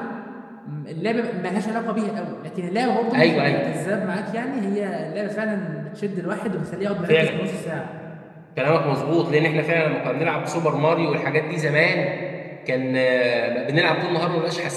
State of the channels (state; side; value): identical; both; correlation 1.00